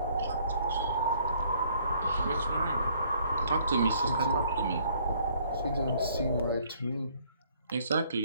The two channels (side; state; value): both; inverted; correlation -0.62